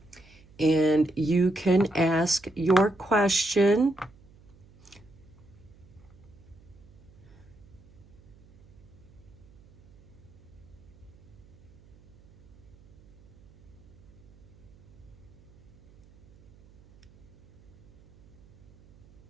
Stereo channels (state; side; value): noise; right; hum, 25 dB below the sound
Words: and you can ask your question.